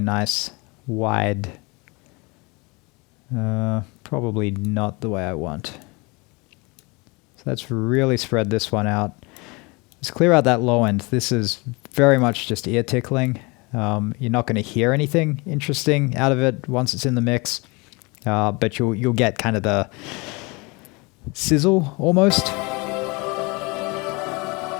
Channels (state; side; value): quieter; right; 27.2 dB